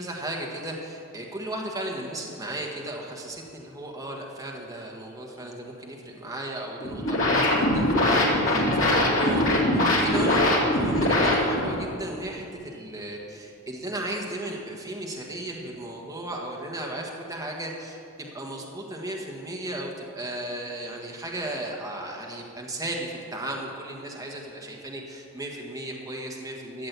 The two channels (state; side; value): normal; both; correlation 0.20